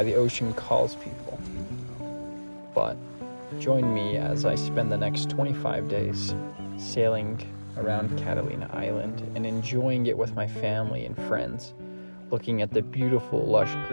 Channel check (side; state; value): both; inverted; correlation -1.00